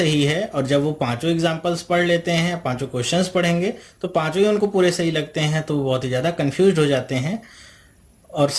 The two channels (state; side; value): identical; both; correlation 1.00